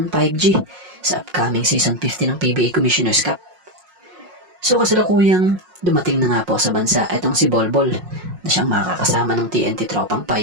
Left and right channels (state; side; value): late; left; 5.5 ms